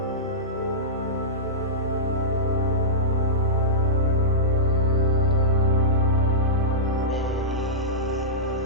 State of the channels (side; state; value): both; normal; correlation -0.15